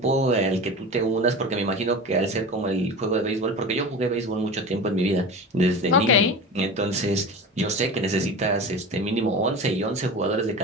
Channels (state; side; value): normal; both; correlation 0.31